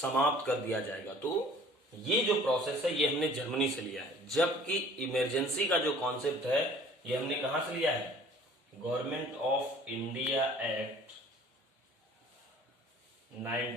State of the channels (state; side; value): normal; both; correlation 0.50